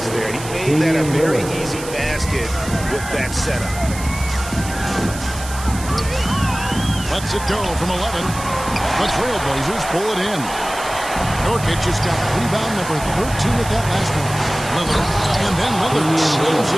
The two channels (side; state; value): right; noise; hiss, 12 dB below the sound